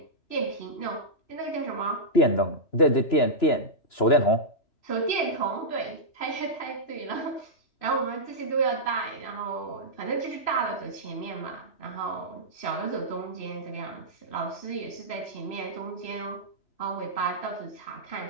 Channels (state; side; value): late; right; 3.0 ms